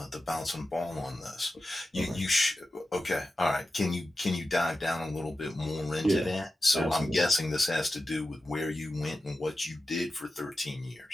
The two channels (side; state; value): both; normal; correlation 0.92